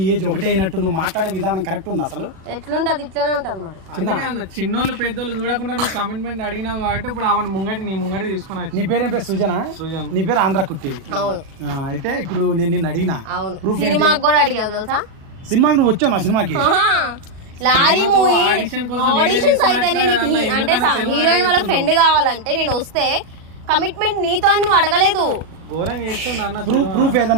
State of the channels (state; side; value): late; left; 37 ms